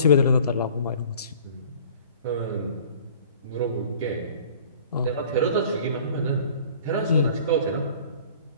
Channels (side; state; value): both; inverted; correlation -0.48